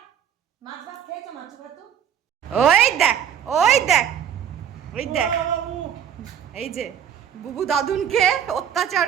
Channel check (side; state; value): left; quieter; 8.9 dB